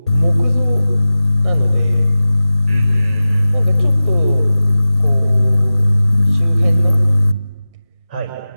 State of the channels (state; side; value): inverted; both; correlation -0.96